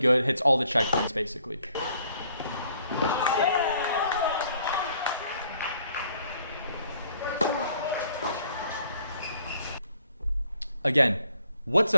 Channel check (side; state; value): both; inverted; correlation -0.64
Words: hits all the checkpoints basically. Again, what's